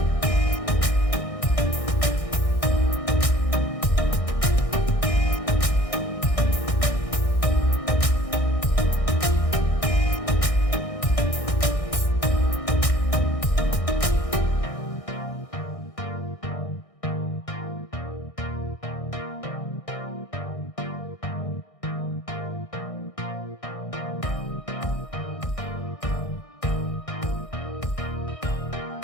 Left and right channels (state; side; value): late; right; 1.6 ms